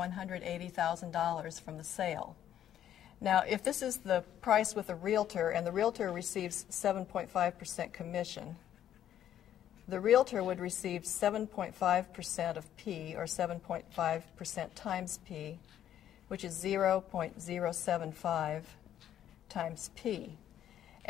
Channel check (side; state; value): right; quieter; 10.9 dB